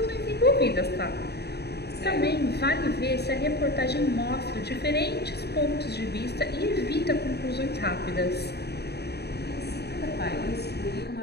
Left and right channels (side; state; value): right; late; 0.48 ms